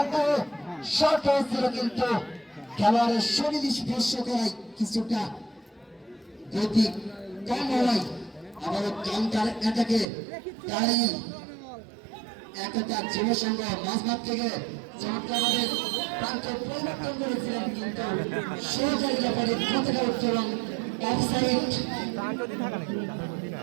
শর্ট হয়েছিল কিন্তু খেলোয়াড়ের শরীর স্পর্শ করায় কিছুটা গতি কম হওয়ায় আবারও কাউন্টার অ্যাটাকে দাঁড়িয়ে একটা যুবসংঘ মাঝমাঠ থেকে চমৎকারভাবে প্রান্ত পরিবর্তন করেছিলেন কিন্তু সহকারী ব্যাপারে কতটা উত্তরণ অফসাইড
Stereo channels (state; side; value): drops out; left; at 10.1 s